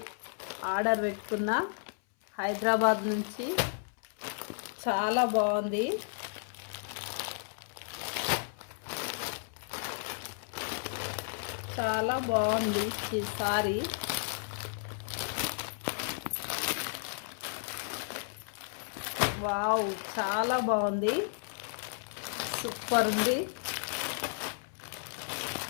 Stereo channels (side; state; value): right; silent; 56 dB below the other